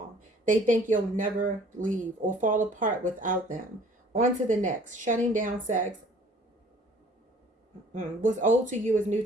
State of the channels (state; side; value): normal; both; correlation 0.54